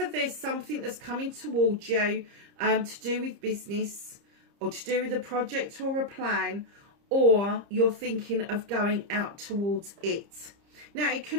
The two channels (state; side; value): late; left; 30 ms